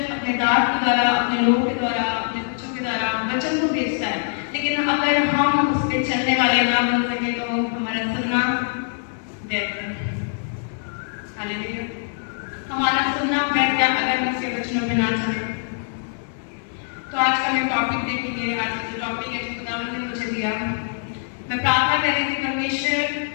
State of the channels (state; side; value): silent; right; 63 dB below the other